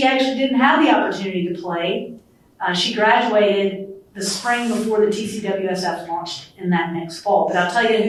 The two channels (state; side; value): identical; both; correlation 1.00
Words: actually didn't have the opportunity to play. She graduated the spring before the TCWSF launched in that next fall. But I'll tell you